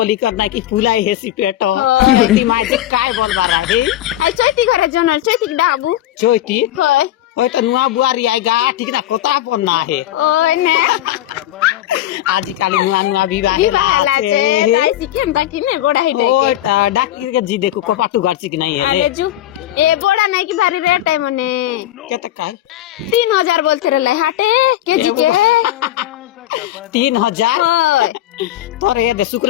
करना कि फुलाई हेसी पेटो हाँ। ती माय जे काय बोल बारा हे আই চৈতি ঘরে জনল চৈতি ডাবু चोइती হয় होय तो नुआ बुआरी आएगा ठीक ना कोता पन्ना है ওই নে आज काली नुआ विवाह বিবাহলা আছে তাই শিখেন তা কিনে বড়া হিটে ओय डाकी के जी देखो कोपाटू गर्ची कि नहीं है আরে জু এ বড়া নাই কি ভারী রেট है মনে केते काय 3000 बोलते रे हाटे केजी के 3000 হয় तोरे दे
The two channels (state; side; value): quieter; right; 13.0 dB